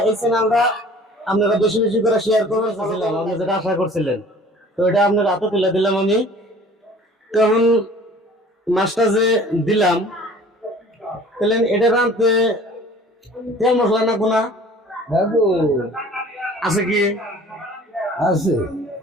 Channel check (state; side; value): normal; both; correlation 0.48